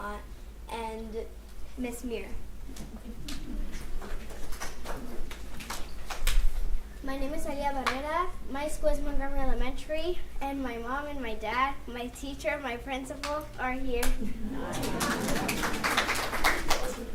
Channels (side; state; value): both; identical; correlation 1.00